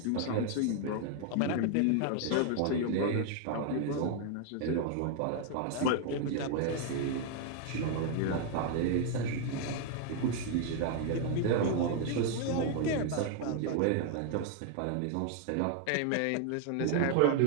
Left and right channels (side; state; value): both; different; correlation 0.00